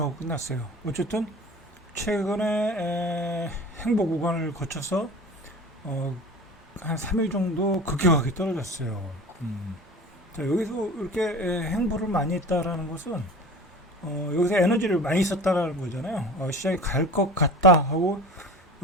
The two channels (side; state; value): both; normal; correlation 0.37